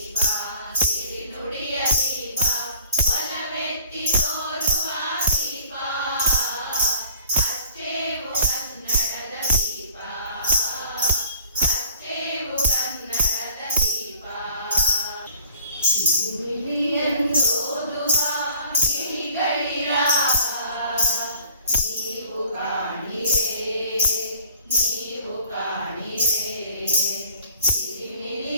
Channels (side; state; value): both; inverted; correlation -0.52